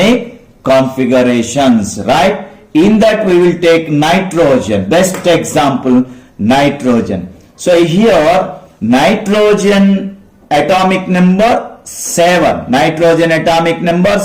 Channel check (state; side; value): identical; both; correlation 1.00